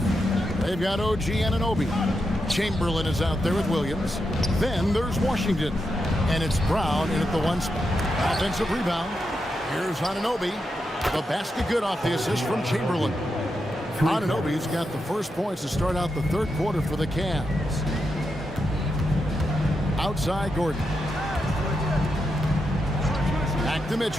They've got OG Anunoby. Chamberlain is out there with Williams. Then there's Washington. And it's Brown in at the one spot. Offensive rebound. Here's Anunoby. The basket good off the assist from Chamberlain. Anunoby's got the first points to start out the third quarter for the Cavs. Outside Gordon. Back to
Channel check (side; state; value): both; normal; correlation 0.85